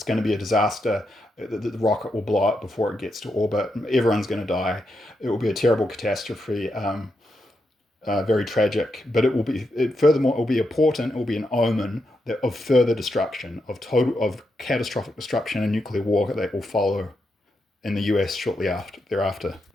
going to be a disaster. The rocket will blow up before it gets to orbit. Everyone's going to die. It will be a terrible catastrophe. Very tragic, but furthermore, it will be a portent, it will be an omen of further destruction, of catastrophic destruction and nuclear war that will follow in the US shortly thereafter.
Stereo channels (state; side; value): normal; both; correlation 0.84